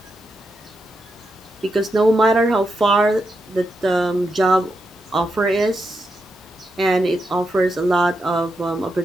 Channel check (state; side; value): normal; both; correlation 0.85